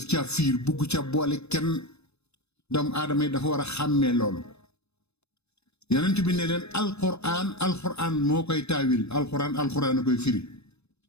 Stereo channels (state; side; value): late; right; 0.80 ms